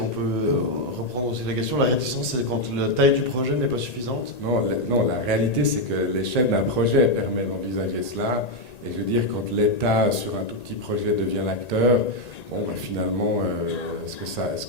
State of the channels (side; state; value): right; late; 1.9 ms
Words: peut reprendre aussi la question, la réticence c'est quand la taille du projet n'est pas suffisante? Non, la réalité c'est que l'échelle d'un projet permet d'envisager cela. Et je veux dire, quand l'État sur un tout petit projet devient l'acteur, bon, ben, finalement, est-ce que ça